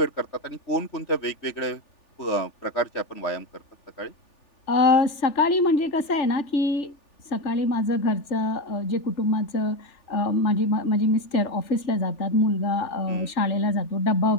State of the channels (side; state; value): right; late; 3.4 ms